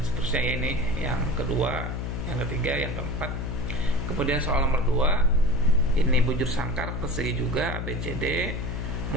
seterusnya ini. Yang kedua, yang ketiga, yang keempat. Kemudian soal nomor 2, ini bujur sangkar persegi juga ABCD.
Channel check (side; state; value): left; noise; hum, 3 dB below the sound